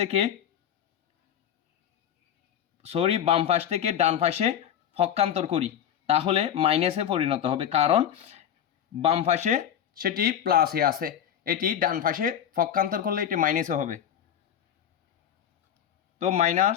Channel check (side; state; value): right; quieter; 9.7 dB